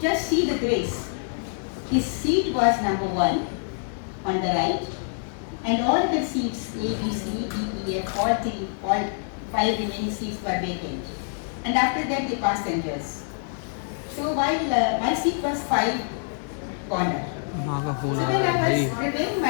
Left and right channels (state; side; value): silent; right; 61 dB below the other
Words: Just see the grace. His seat was number 1 on the right, and all the seats A, B, C, D, E, F, all 5 remaining seats were vacant. And after that the passengers. So while my seat was 5 corner. So when I was preparing